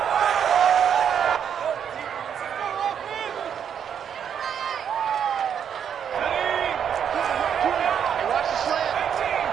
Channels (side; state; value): left; quieter; 8.3 dB